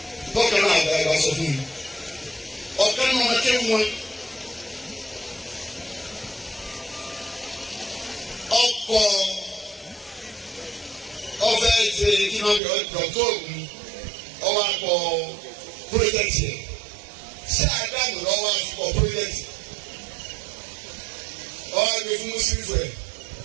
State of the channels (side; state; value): left; drops out; at 12.6 s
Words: Bọ́kàn náà àgbà ìbá sọ fún mi. Ọ̀kan náà wọn ké wọn. Ọkọ̀ ọ̀fẹ́ ṣe kí wọ́n bí ọ̀dọ̀ ògùn ọwọ́ akọ pírọ́jẹ́tì ẹ̀. Ṣé àdánù lọ́wọ́ akọ pírọ́jẹ́tì? Ọwọ́ àgbẹ̀ fún Mùsùlùmí rẹ̀.